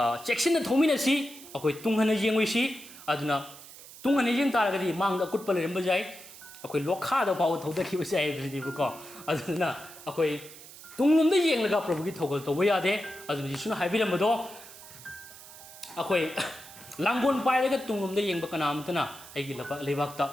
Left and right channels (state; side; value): noise; right; hiss, 17 dB below the sound